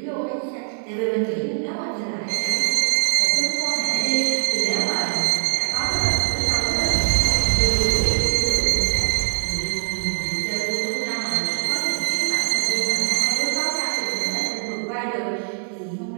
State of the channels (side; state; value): left; silent; 64 dB below the other